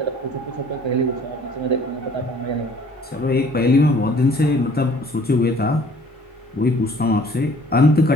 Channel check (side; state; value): both; normal; correlation 0.54